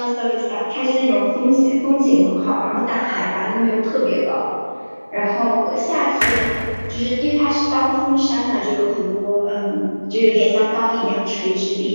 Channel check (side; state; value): both; inverted; correlation -1.00